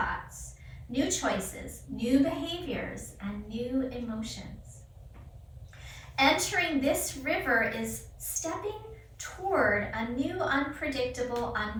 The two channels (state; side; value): identical; both; correlation 1.00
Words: new choices, new behaviors, and new emotions. Entering this river is stepping toward a new, unpredictable,